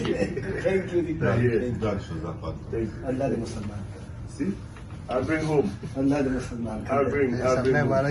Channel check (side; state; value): both; identical; correlation 1.00